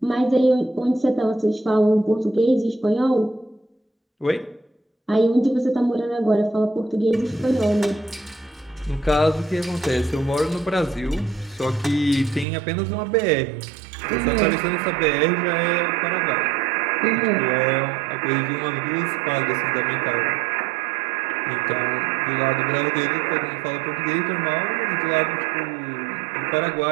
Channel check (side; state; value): left; drops out; at 12.5 s